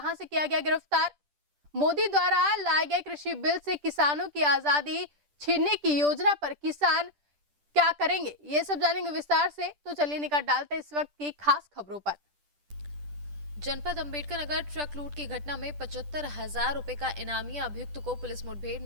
से किया गया गिरफ्तार। मोदी द्वारा लाए गए कृषि बिल से किसानों की आजादी छीनने की योजना पर किसान क्या करेंगे, ये सब जानेंगे विस्तार से। तो चलिए निकाल डालते हैं इस वक्त की खास खबरों पर। जनपद अंबेडकर नगर ट्रक लूट की घटना में 75,000 रुपए का इनामी अभियुक्त को पुलिस मुठभेड़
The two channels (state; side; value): late; left; 10 ms